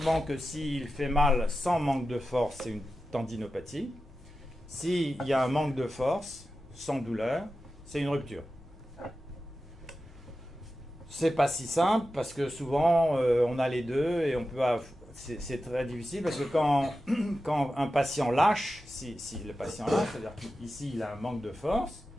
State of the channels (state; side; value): normal; both; correlation 0.92